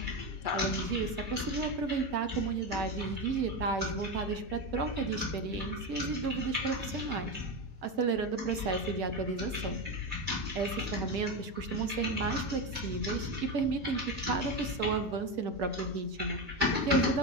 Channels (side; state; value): left; late; 5.8 ms